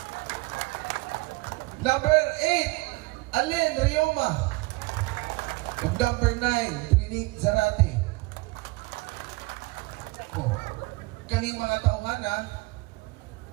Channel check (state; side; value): quieter; left; 24.0 dB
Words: Number 8, Allen Rioma. And number 9, Trinit Zarate. Oh, kaning mga tauhana,